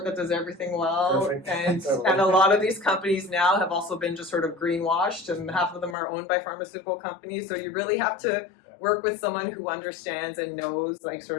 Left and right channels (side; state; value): right; drops out; at 6.0 s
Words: that does everything well. Perfect. And and a lot of these companies now have also been just sort of greenwashed, and half of them are owned by pharmaceutical companies. So you really have to work with someone who understands and knows like